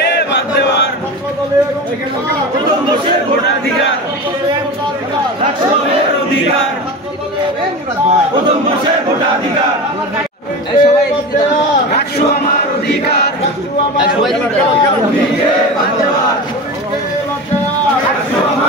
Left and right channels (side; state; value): both; normal; correlation 0.28